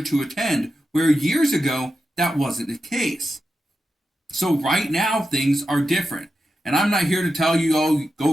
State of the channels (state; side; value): normal; both; correlation 0.90